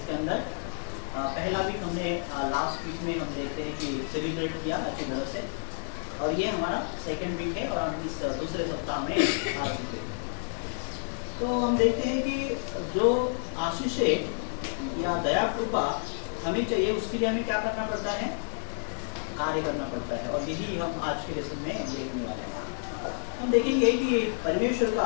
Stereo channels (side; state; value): right; silent; digital silence